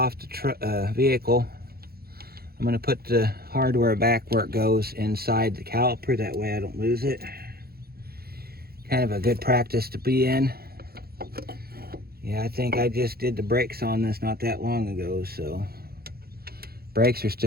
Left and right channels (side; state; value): left; late; 0.45 ms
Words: the vehicle, I'm going to put the hardware back where it goes inside the caliper. That way I don't lose it. Kind of a good practice to be in. Yeah, I think I just did the brakes on this not that long ago, so brakes are